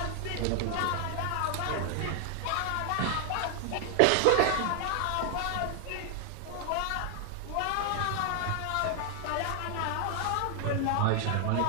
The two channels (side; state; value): both; different; correlation 0.00